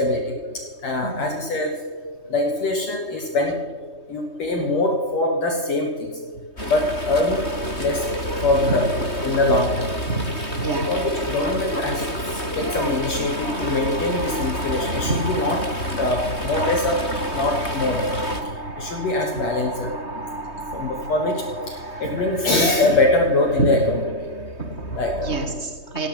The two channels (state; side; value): late; right; 3.2 ms